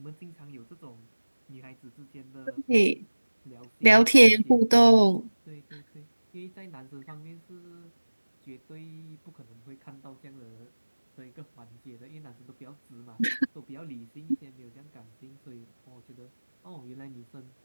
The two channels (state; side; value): inverted; both; correlation -1.00